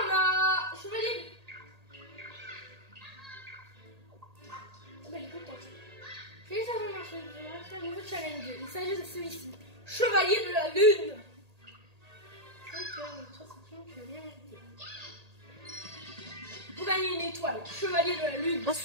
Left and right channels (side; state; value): left; late; 1.8 ms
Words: on a... Chevalier... Ah, bah, elle est contente. Félicitations, c'est un nouveau challenge. Il s'agit de celui-ci. Chevalier de la Lune. Vous gagnez une étoile. Chevalier de la Lune. Ah,